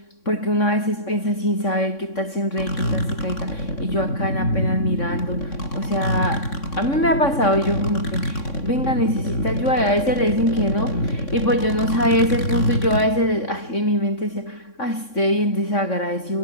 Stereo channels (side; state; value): right; late; 3.6 ms